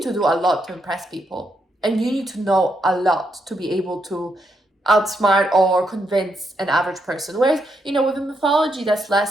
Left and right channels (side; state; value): both; normal; correlation 0.79